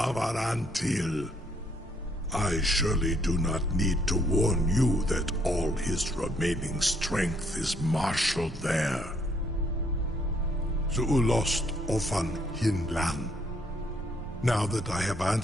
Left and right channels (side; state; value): both; normal; correlation 0.69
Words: I surely do not need to warn you that all his remaining strength is marshaled there. Zuulost ofan hinlan. Now that I have